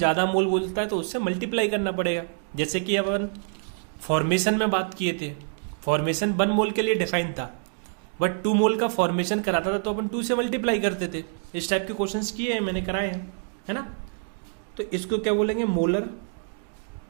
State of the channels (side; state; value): left; silent; 61 dB below the other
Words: मोल बोलता है तो उससे मल्टीप्लाई करना पड़ेगा। जैसे कि अपन फॉर्मेशन में बात किए थे, फॉर्मेशन 1 मोल के लिए डिफाइन था, बट 2 मोल का फॉर्मेशन कराता था तो अपन 2 से मल्टीप्लाई करते थे। इस टाइप के क्वेश्चंस किए हैं मैंने, कराए हैं, है ना। तो इसको क्या बोलेंगे मोलर